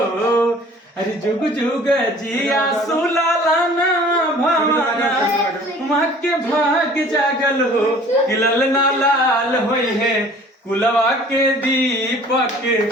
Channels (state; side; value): normal; both; correlation 0.50